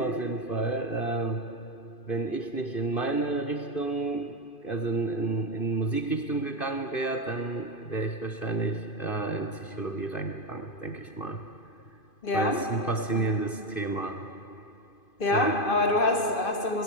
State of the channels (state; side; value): late; right; 2.5 ms